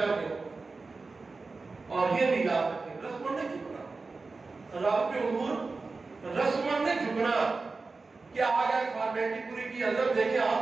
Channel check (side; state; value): left; quieter; 3.9 dB